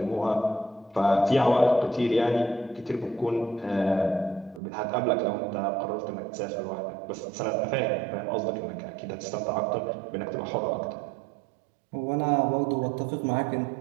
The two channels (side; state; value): left; drops out; at 4.6 s